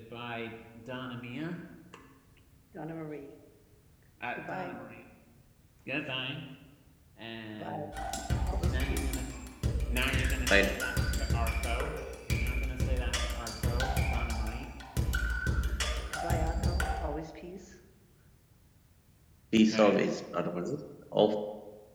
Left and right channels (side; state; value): both; identical; correlation 1.00